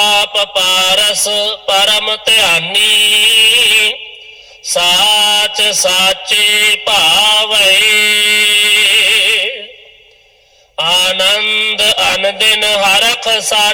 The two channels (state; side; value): identical; both; correlation 1.00